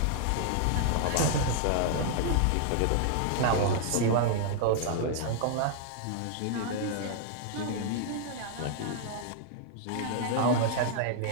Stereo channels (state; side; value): different; both; correlation -0.01